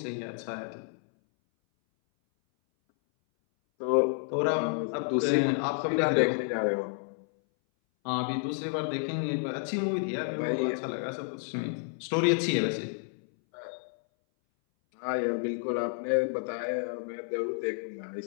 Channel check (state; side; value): silent; right; 58 dB below the other